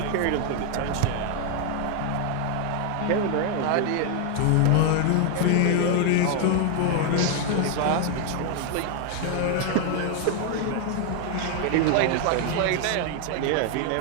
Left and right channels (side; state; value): both; different; correlation 0.00